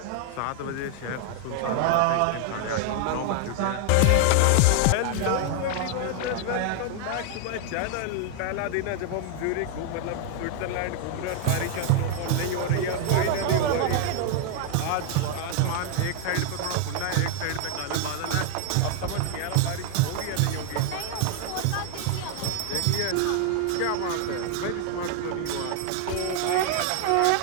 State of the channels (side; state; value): both; different; correlation 0.00